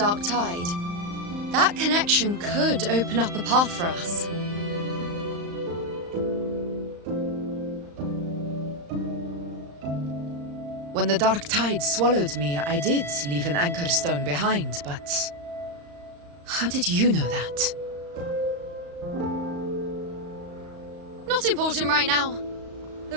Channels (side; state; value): left; late; 35 ms